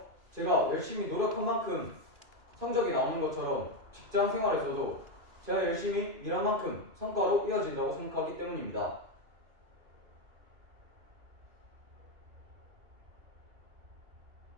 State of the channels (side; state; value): left; late; 2.5 ms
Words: 제가 열심히 노력한 만큼 성적이 나오는 것처럼 직장 생활에서도 제가 열심히 일한 만큼 성과로 이어진다고 생각하기 때문입니다.